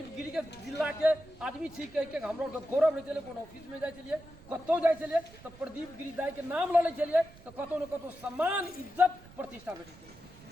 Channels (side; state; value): right; noise; rumble, 22 dB below the sound